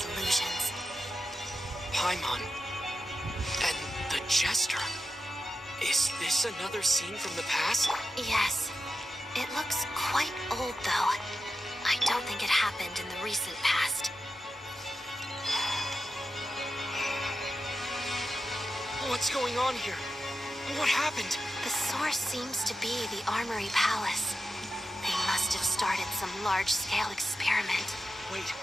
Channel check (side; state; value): both; normal; correlation 0.90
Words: illusions. Paimon. And the Jester. Is this another scene from the past? Yes. It looks quite old, though. I don't think it happened in the recent past. What's going on here? What happened? The source seems to be the Armory Palace. They must must have started some large-scale experiment. Wait,